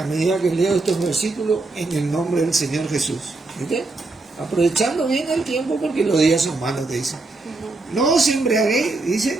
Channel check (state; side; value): quieter; left; 3.3 dB